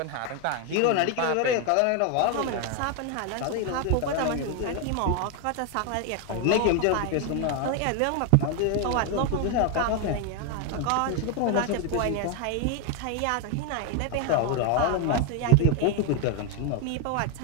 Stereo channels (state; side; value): different; both; correlation 0.01